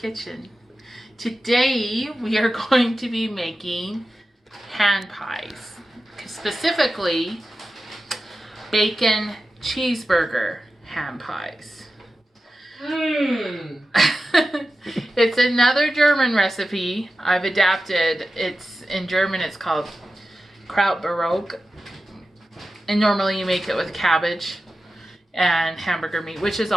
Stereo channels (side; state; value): both; normal; correlation 0.93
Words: Today we are going to be making hand pies, specifically bacon cheeseburger hand pies. It's another German recipe I've adapted. It's in German, it's called Krautbarock, and normally you make it with cabbage and hamburger meat, which is